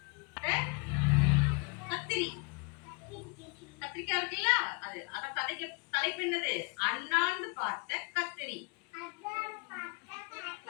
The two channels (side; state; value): right; quieter; 32.3 dB